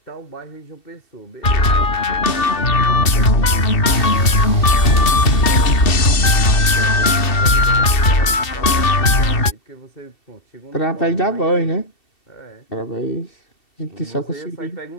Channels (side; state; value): right; late; 2.7 ms